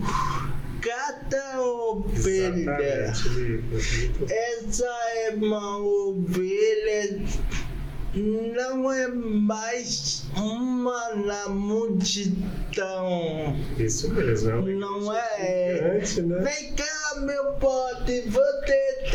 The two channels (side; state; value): both; identical; correlation 1.00